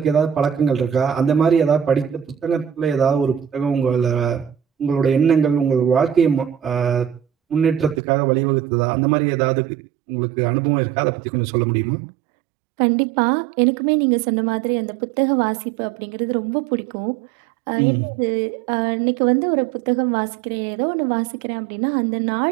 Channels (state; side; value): drops out; left; at 8.0 s